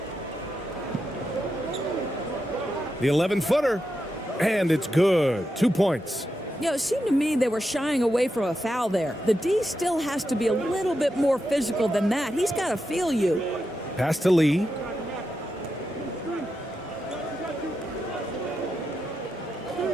The 11-footer, and it's good. 2 points. You know, it seemed to me they were shying away from a foul there. The D still has to be a little bit more physical than that. He's got to feel you. Pass to Lee.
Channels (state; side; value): normal; both; correlation 0.86